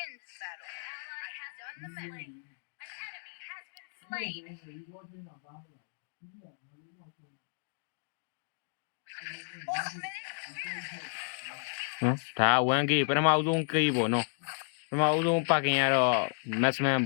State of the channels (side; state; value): right; silent; digital silence